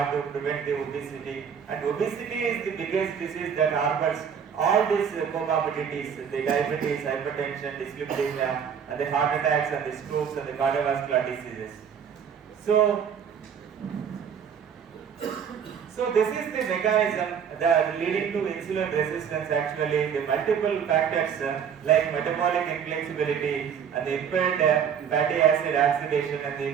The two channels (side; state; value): left; quieter; 7.6 dB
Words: to prevent the obesity. And obesity is the biggest disease that harbors all these comorbidities, the diabetes, hypertension, dyslipidemia, and the heart attacks and the strokes and the cardiovascular diseases. So this is the mechanism that leading to insulin resistance. Actually, the multiple factors like metabolic inflexibility and the impaired fatty acid oxidation and the